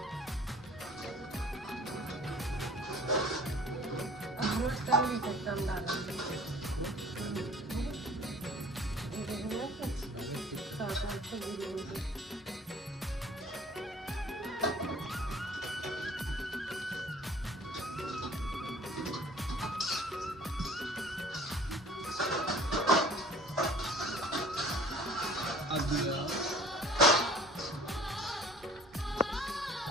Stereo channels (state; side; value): normal; both; correlation 0.50